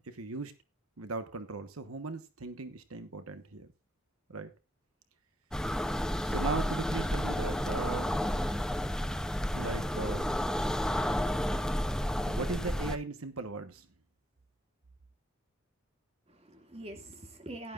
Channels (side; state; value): both; normal; correlation 0.77